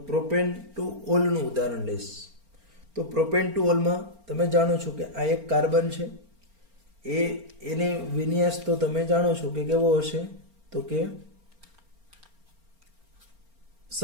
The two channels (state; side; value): late; left; 4.4 ms